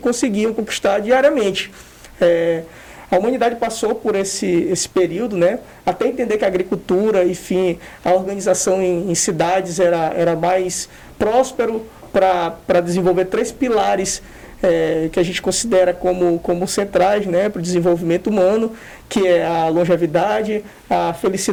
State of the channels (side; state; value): both; identical; correlation 1.00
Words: conquistar diariamente. A humanidade passou por esse período, né, até entender que a agricultura, enfim, a organização em cidades era mais próspero para desenvolver 3 pilares que a gente considera como centrais, né, para o desenvolvimento humano, que é a longevidade, a